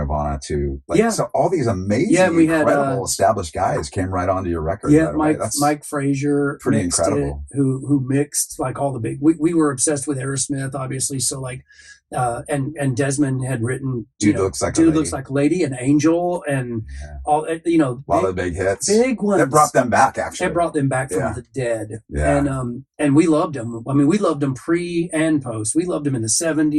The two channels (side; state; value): both; identical; correlation 1.00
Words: to so all these amazing, incredible established guys came right onto your record. Yeah, Mike Frazier, pretty incredible. Who mixed like all the big. We were obsessed with Aerosmith, obviously. So like, and Desmond had written Dude Looks Like a Lady, and Angel, and all a lot of big hits, big ones. That brought them back. Actually, it brought them back from the dead. Yeah. And we loved them. I mean, we loved them pre and post. We loved them in the